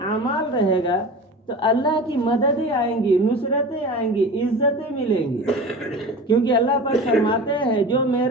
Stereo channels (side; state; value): both; normal; correlation 0.34